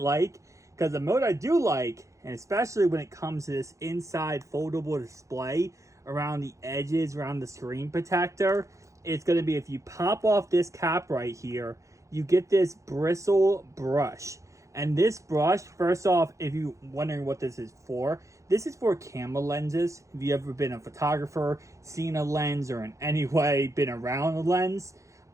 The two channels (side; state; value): left; late; 0.15 ms